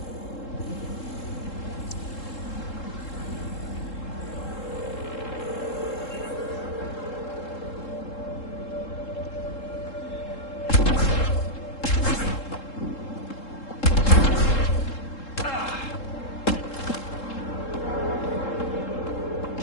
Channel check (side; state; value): right; late; 3.7 ms